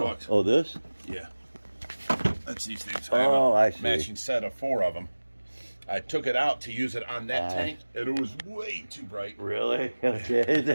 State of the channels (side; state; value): both; inverted; correlation -1.00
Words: Oh, this? Yeah. That's these things. Oh, I see. Matching set of 4 of them. I took it out to use it on that tank, and it was way too bright. Really? Okay.